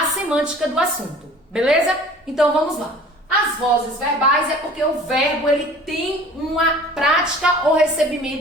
semântica do assunto, beleza? Então vamos lá. As vozes verbais é porque o verbo ele tem uma prática ou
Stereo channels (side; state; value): both; normal; correlation 0.46